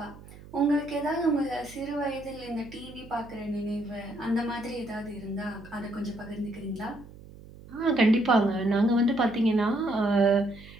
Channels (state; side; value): noise; right; hum, 19 dB below the sound